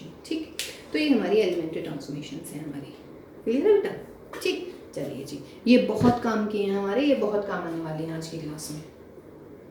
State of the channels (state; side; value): identical; both; correlation 1.00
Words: ठीक। तो ये हमारी एलिमेंट्री ट्रांसफॉर्मेशन है हमारी, क्लियर है बेटा, ठीक। चलिए जी, ये बहुत काम किए हैं हमारे, ये बहुत काम आने वाले हैं आज की क्लास में।